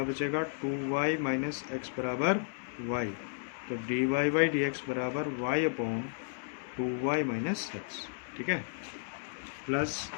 बचेगा 2y माइनस एक्स बराबर y, तो d Y by D x बराबर y upon 2y minus x. ठीक है, प्लस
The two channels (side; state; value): right; silent; 56 dB below the other